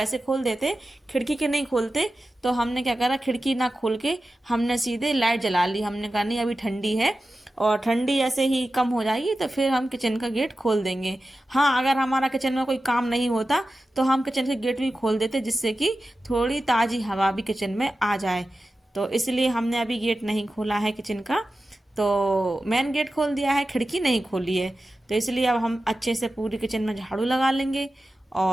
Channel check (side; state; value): both; normal; correlation 0.93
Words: खोल देते, खिड़की के नहीं खोलते। तो हमने क्या करा, खिड़की ना खोल के हमने सीधे लाइट जला ली। हमने कहा नहीं, अभी ठंडी है और ठंडी ऐसे ही कम हो जाएगी तो फिर हम किचन का गेट खोल देंगे। हाँ, अगर हमारा किचन में कोई काम नहीं होता तो हम किचन के गेट भी खोल देते, जिससे कि थोड़ी ताज़ी हवा भी किचन में आ जाए। तो इसलिए हमने अभी गेट नहीं खोला है किचन का। तो मेन गेट खोल दिया है, खिड़की नहीं खोली है। तो इसलिए अब हम अच्छे से पूरी किचन में झाड़ू लगा लेंगे।